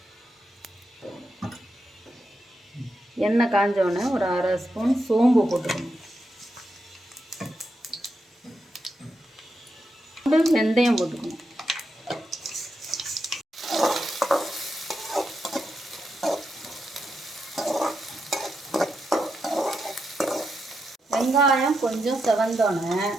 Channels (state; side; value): normal; both; correlation 0.84